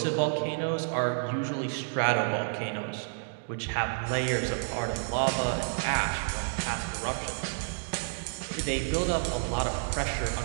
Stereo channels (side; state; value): left; silent; digital silence